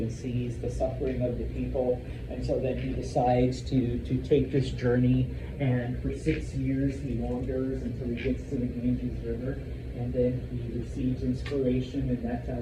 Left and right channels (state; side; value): identical; both; correlation 1.00